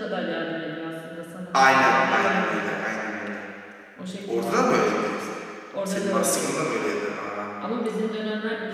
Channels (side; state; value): both; identical; correlation 1.00